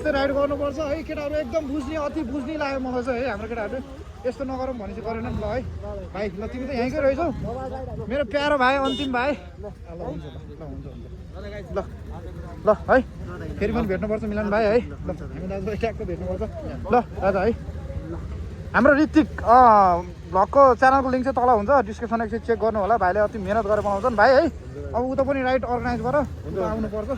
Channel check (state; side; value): identical; both; correlation 1.00